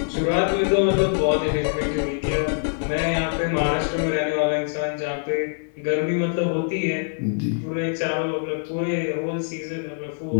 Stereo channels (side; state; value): right; silent; digital silence